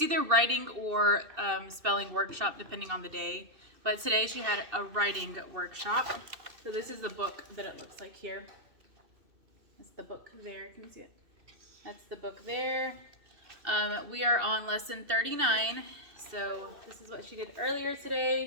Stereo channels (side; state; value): left; late; 2.7 ms